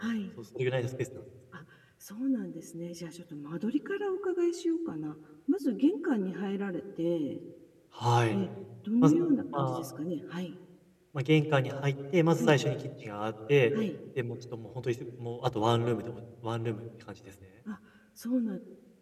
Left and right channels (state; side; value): identical; both; correlation 1.00